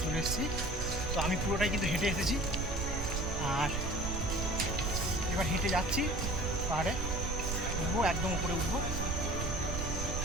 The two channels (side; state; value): right; noise; rumble, 2 dB below the sound